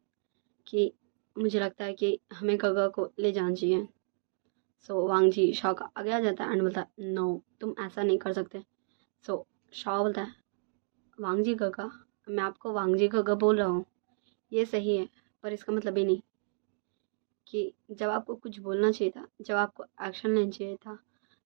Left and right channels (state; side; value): silent; left; digital silence